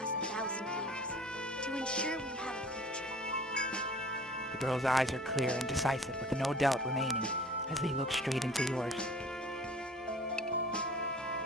1,000 years to ensure we have a future. The girl's eyes are clear and decisive, with no doubt remaining as they look straight into yours.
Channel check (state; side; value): normal; both; correlation 0.47